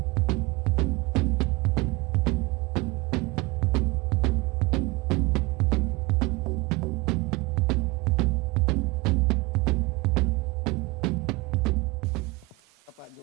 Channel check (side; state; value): left; quieter; 24.0 dB